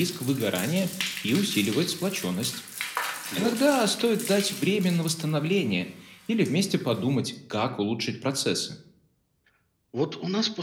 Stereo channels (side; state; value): both; identical; correlation 1.00